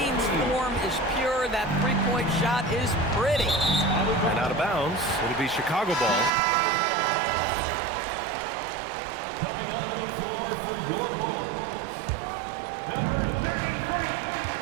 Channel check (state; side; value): drops out; left; at 6.3 s